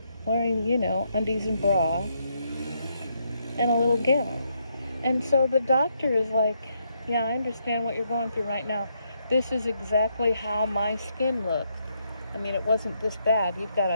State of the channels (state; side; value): inverted; both; correlation -0.77